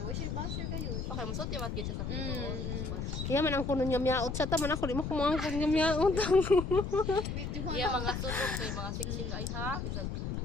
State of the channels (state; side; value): noise; left; rumble, 3 dB below the sound